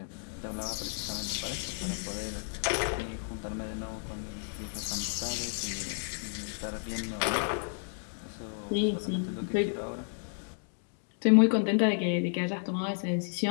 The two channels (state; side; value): silent; right; digital silence